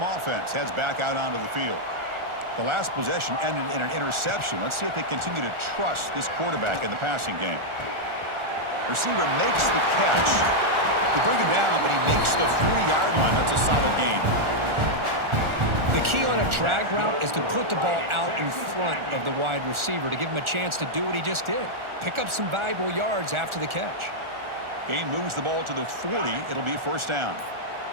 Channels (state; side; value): late; left; 1.4 ms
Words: offense heads back out onto the field. The last possession ended in an interception. Let's see if they continue to trust this quarterback in the passing game. Receiver makes the catch. They bring him down, but he makes the 40-yard line. That's a solid gain. The key on a drag route is to put the ball out in front of the wide receiver to give him a chance to do what he just did. Pick up some valuable yards after the catch. Game moves the ball to the 40. It'll be 1st down.